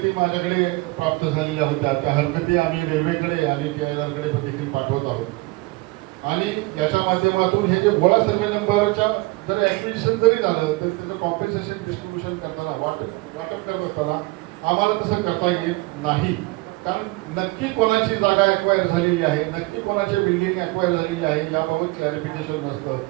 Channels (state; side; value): quieter; left; 23.1 dB